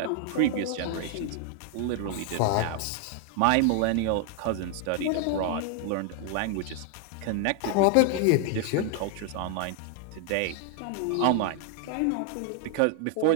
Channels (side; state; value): both; different; correlation 0.00